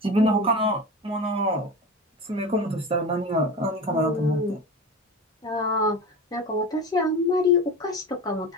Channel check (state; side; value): normal; both; correlation 0.29